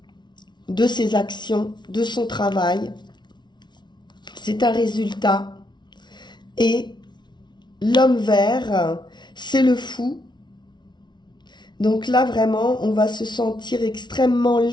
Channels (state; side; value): late; right; 0.21 ms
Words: de ses actions, de son travail. C'est un résultat. Et l'homme vert, c'est le fou. Donc là, vraiment, on va se sentir extrêmement